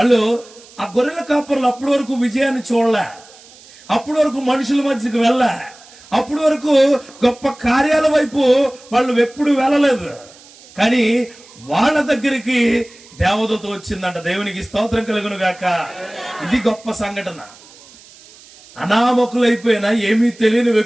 ఆ గొర్రెల కాపరులు అప్పటి వరకు విజయాన్ని చూడలే, అప్పటి వరకు మనుషుల మధ్యకి వెళ్ళా, అప్పటి వరకు గొప్ప కార్యాల వైపు వాళ్ళు ఎప్పుడు వెళ్ళలేదు. కానీ వాళ్ళ దగ్గరికి దేవదూత వచ్చిందంట. దేవునికి స్తోత్రం కలుగును గాక. ఇది గొప్ప సంఘటన. అనామకులైపోయినా ఏమీ తెలియని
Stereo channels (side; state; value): right; noise; hiss, 23 dB below the sound